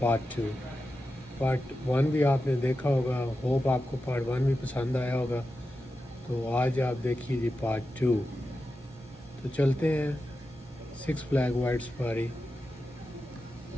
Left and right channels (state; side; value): normal; both; correlation 0.91